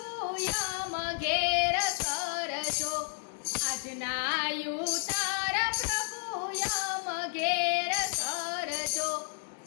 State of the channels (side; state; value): right; silent; 57 dB below the other